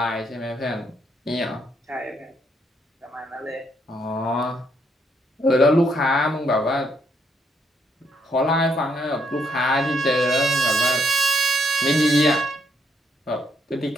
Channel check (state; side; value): normal; both; correlation 0.73